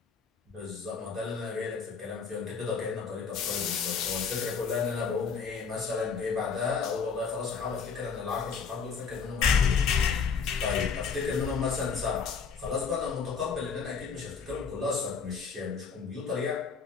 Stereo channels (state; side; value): quieter; right; 5.7 dB